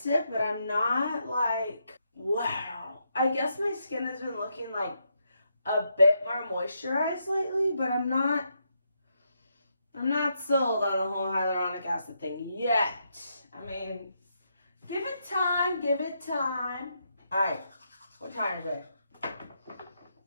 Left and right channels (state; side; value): inverted; both; correlation -0.80